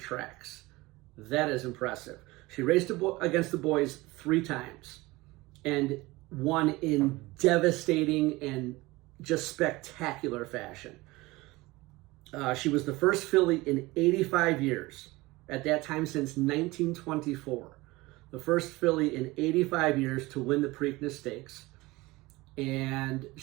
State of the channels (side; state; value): left; quieter; 21.1 dB